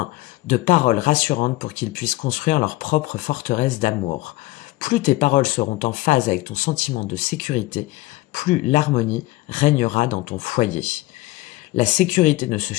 de paroles rassurantes pour qu'ils puissent construire leur propre forteresse d'amour. Plus tes paroles seront en phase avec ton sentiment de sécurité, plus l'harmonie régnera dans ton foyer. La sécurité ne se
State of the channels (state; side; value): quieter; right; 19.1 dB